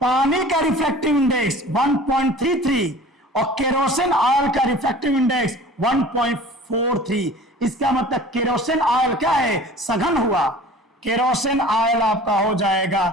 का रिफ्रैक्टिव इंडेक्स 1.33 और केरोसिन ऑयल का रिफ्रैक्टिव इंडेक्स 1.43। इसका मतलब केरोसिन ऑयल क्या है, सघन हुआ। केरोसिन ऑयल आपका हो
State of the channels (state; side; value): normal; both; correlation 0.44